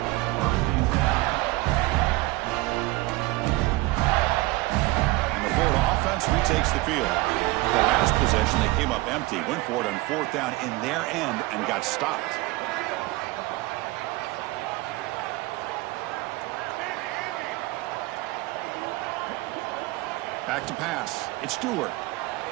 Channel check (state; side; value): quieter; left; 20.7 dB